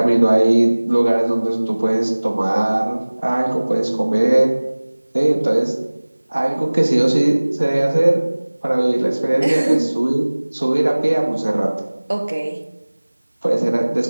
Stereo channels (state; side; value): inverted; both; correlation -1.00